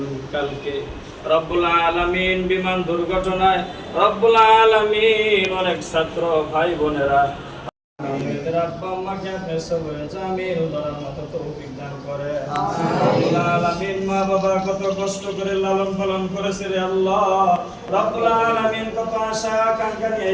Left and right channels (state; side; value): identical; both; correlation 1.00